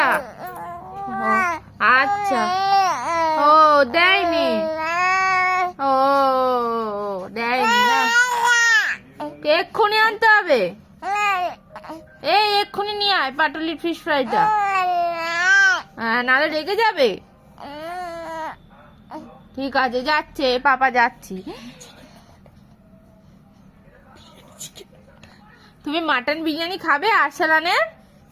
আচ্ছা, ও দেয়নি, ও দেয়নি না, এক্ষুনি আনতে হবে। এই এক্ষুনি নিয়ে আয় পাটুলির ফিশ ফ্রাইটা, নাহলে রেগে যাবে। ঠিক আছে, যাচ্ছে, পাপা যাচ্ছি। তুমি মাটন বিরিয়ানি খাবে আরসালানের?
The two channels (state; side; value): identical; both; correlation 1.00